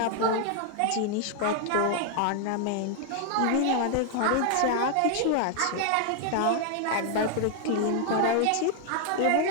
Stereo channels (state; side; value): different; both; correlation 0.00